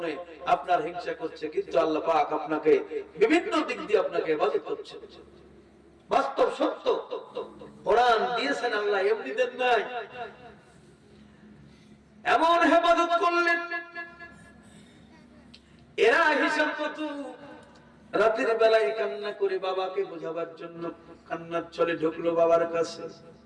আপনার হিংসা করছে, কিন্তু আল্লাহ পাক আপনাকে বিভিন্ন দিক দিয়ে আপনাকে হেফাজত করছে। বাস্তব সত্য, কোরআন দিয়েছেন আল্লাহ, এমনি দেন নাই। এমন হেফাজত করলেন, এরা হিসাব কত রাতের বেলায় কান্না করে বাবাকে বোঝাবার জন্য কান্নার ছলে ঢুকলো বাবার কাছে।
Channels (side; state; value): both; identical; correlation 1.00